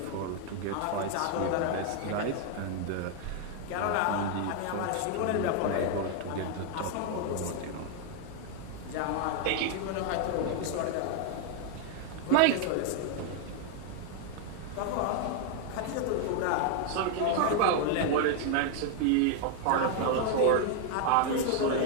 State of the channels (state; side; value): different; both; correlation 0.00